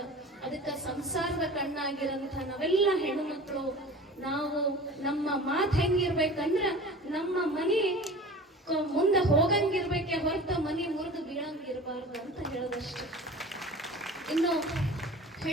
ಅದಕ್ಕ ಸಂಸಾರದ ಕಣ್ಣಾಗಿರಂತ ನಾವೆಲ್ಲ ಹೆಣ್ಣು ಮಕ್ಕಳು ನಾವು ನಮ್ಮ ಮಾತು ಹೆಂಗಿರ್ಬೇಕಂದ್ರ ನಮ್ಮ ಮನಿ ಮುಂದೆ ಹೋಗಂಗಿರ್ಬೇಕೆ ಹೊರತ ಮನಿ ಮುರಿದು ಬೀಳಂಗಿರ್ಬಾರ್ದು ಅಂತ ಹೇಳೋದಷ್ಟೇ. ಇನ್ನು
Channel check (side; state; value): both; normal; correlation 0.39